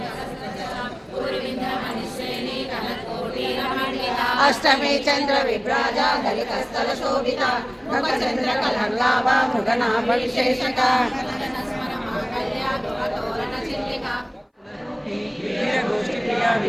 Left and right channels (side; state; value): both; identical; correlation 1.00